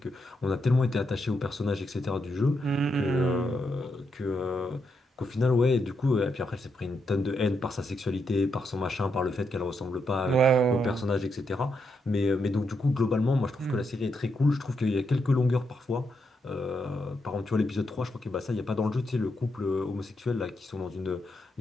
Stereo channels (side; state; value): both; normal; correlation 0.81